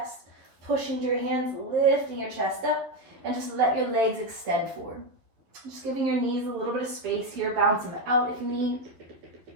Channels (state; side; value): late; left; 11 ms